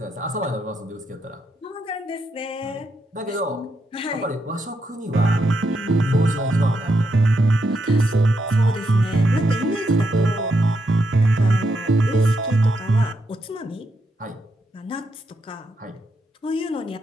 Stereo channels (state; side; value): normal; both; correlation 0.81